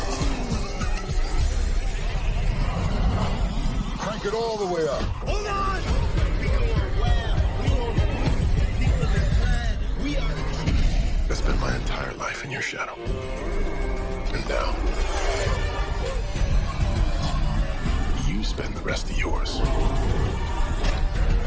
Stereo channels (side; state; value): both; identical; correlation 1.00